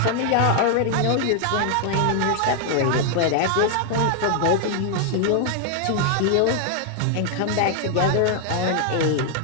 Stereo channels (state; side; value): different; both; correlation 0.00